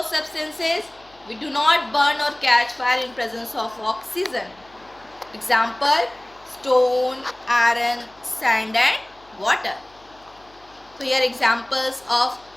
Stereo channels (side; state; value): left; noise; hum, 29 dB below the sound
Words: substances we do not burn or catch fire in presence of oxygen. Example, stone, iron, sand and water. So here examples of